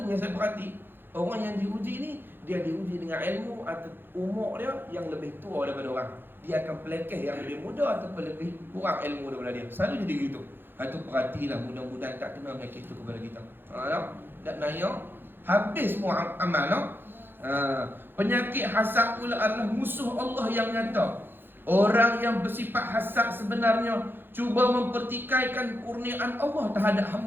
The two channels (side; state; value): left; late; 0.10 ms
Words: yang saya perhati, orang yang diuji ni, dia diuji dengan ilmu atau umur dia yang lebih tua daripada orang. Dia akan pelekeh yang lebih muda ataupun lebih kurang ilmu daripada dia. Selalu jadi gitu. Itu perhatilah, mudah-mudahan tak kena penyakit itu kepada kita. Tak naya, habis semua amal. Penyakit hasad pula adalah musuh Allah yang nyata. Orang yang bersifat hasad sebenarnya cuba mempertikaikan kurniaan Allah terhadap